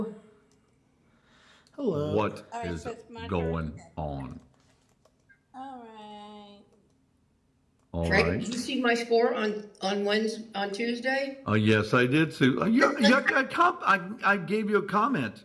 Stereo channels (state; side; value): identical; both; correlation 1.00